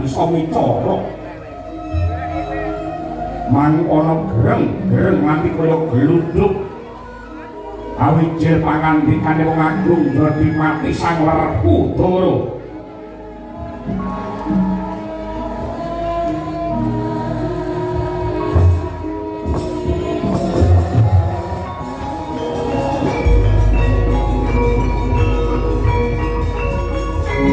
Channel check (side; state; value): both; identical; correlation 1.00